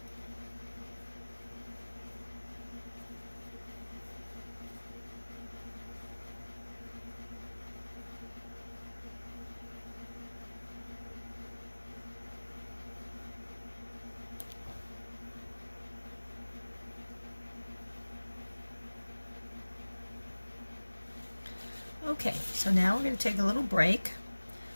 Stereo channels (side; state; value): both; inverted; correlation -1.00